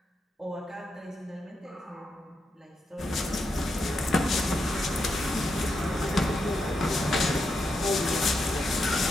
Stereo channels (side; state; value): both; normal; correlation 0.84